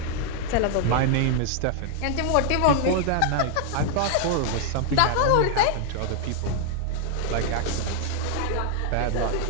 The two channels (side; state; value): both; different; correlation 0.00